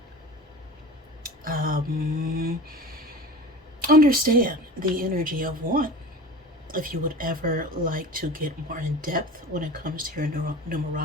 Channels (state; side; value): normal; both; correlation 0.36